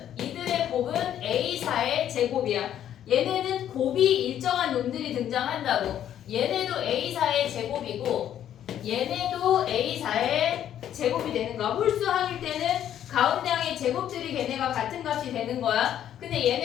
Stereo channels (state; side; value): quieter; right; 10.6 dB